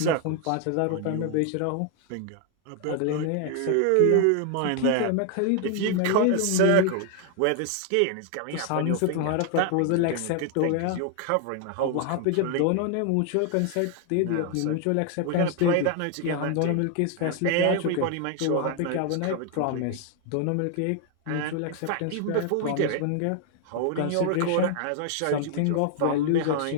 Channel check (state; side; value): different; both; correlation 0.00